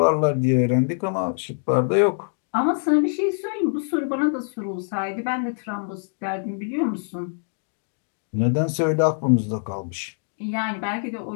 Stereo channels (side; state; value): right; silent; digital silence